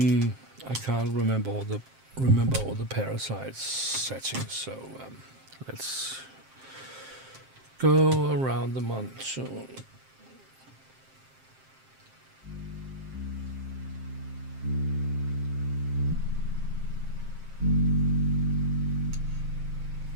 can't remember all the parasites settings, so let's go around the monsoon.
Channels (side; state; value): left; late; 7.6 ms